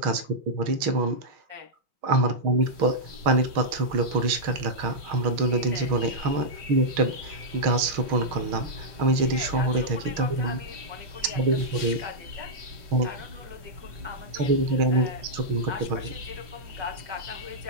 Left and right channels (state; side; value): late; left; 6.3 ms